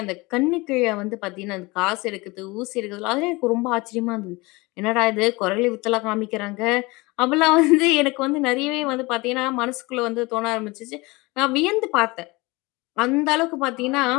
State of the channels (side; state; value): right; quieter; 23.7 dB